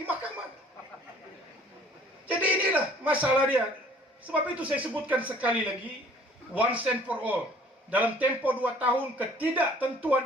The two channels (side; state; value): both; normal; correlation 0.54